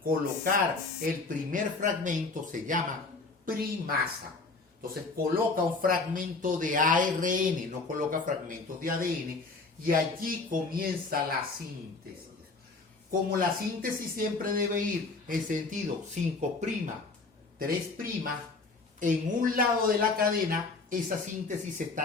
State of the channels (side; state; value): right; quieter; 3.8 dB